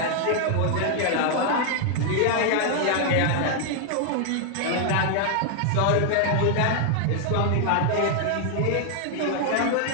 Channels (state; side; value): different; both; correlation 0.00